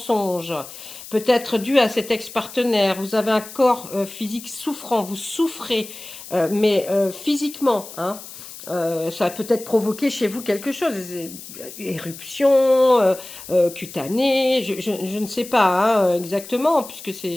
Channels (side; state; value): left; noise; hiss, 14 dB below the sound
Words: peut-être dû à cet ex-partenaire. Vous avez un corps physique souffrant, vous souffrez, mais physiquement, hein. Ça a peut-être provoqué chez vous quelque chose, éruption, cutanée, je ne sais pas hein, exactement, puisque